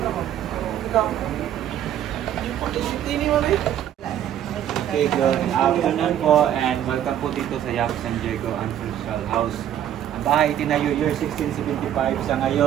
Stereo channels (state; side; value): quieter; left; 10.9 dB